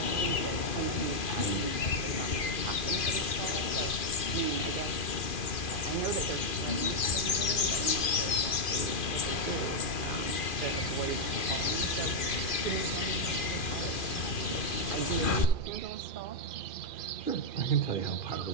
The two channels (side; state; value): right; late; 2.4 ms